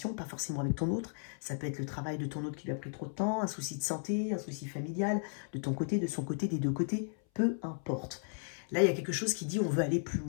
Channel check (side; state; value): right; silent; 55 dB below the other